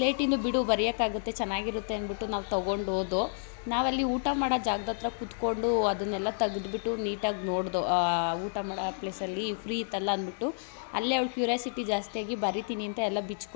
ಬಿಡು ಬರೆಯೋಕ್ಕಾಗುತ್ತೆ, ಚೆನ್ನಾಗಿರುತ್ತೆ ಅಂದ್ಬಿಟ್ಟು ನಾವು ತೊಗೊಂಡು ಹೋದೋ. ನಾವಲ್ಲಿ ಊಟ ಮಾಡೋ ಜಾಗದ ಹತ್ರ ಕೂತ್ಕೊಂಡು ಅದನ್ನೆಲ್ಲ ತೆಗೆದ್ಬಿಟ್ಟು ನೀಟಾಗಿ ನೋಡ್ದೋ. ಊಟ ಮಾಡೋ ಪ್ಲೇಸಲ್ಲಿ ಫ್ರೀ ಇತ್ತಲ್ಲ ಅಂದ್ಬಿಟ್ಟು ಅಲ್ಲೇ ಅವಳು ಕ್ಯೂರಿಯಾಸಿಟಿ ಜಾಸ್ತಿಯಾಗಿ ಬರಿತೀನಿ ಅಂತ ಎಲ್ಲ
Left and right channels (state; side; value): silent; right; digital silence